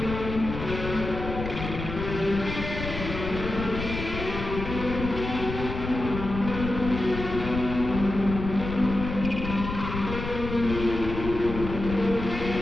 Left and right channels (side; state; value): left; noise; rumble, 6 dB below the sound